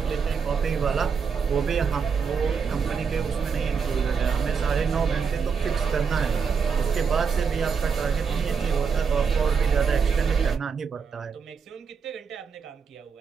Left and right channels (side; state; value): left; quieter; 6.0 dB